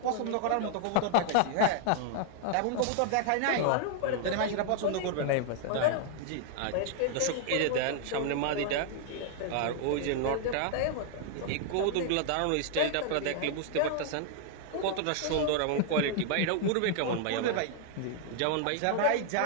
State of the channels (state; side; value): different; both; correlation 0.00